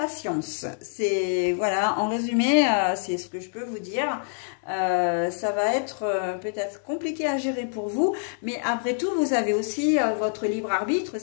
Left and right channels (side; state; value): right; silent; digital silence